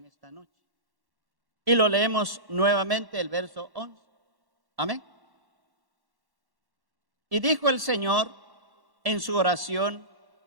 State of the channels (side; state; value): left; late; 1.1 ms